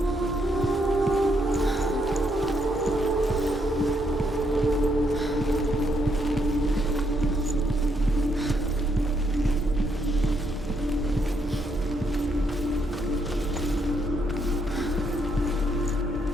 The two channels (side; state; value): both; normal; correlation 0.75